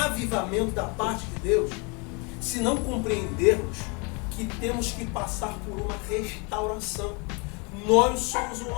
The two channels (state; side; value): quieter; right; 31.6 dB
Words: da parte de Deus se não compreendermos que temos que passar por uma restauração. Nós somos o